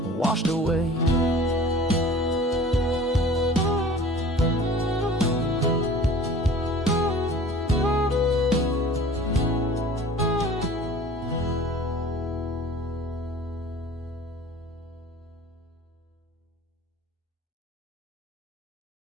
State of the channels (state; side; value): normal; both; correlation 0.45